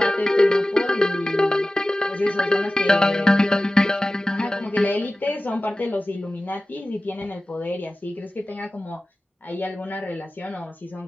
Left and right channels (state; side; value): normal; both; correlation 0.96